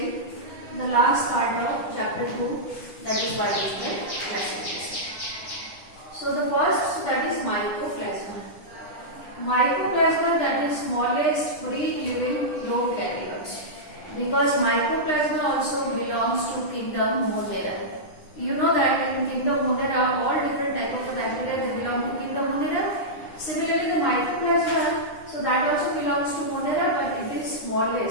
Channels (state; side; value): late; right; 10 ms